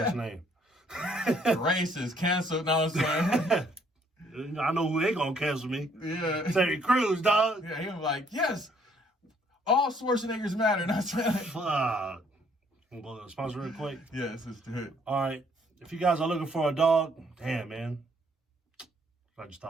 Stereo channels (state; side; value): normal; both; correlation 0.65